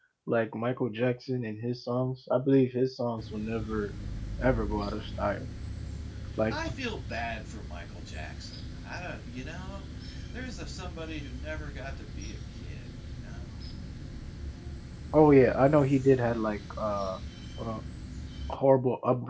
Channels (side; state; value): both; identical; correlation 1.00